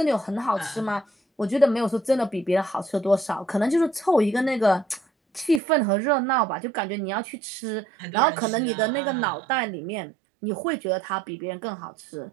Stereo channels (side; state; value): left; drops out; at 5.6 s